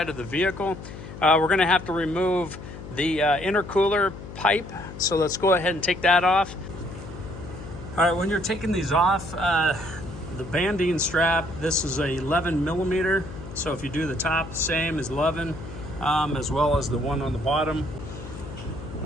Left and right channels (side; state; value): left; noise; hum, 12 dB below the sound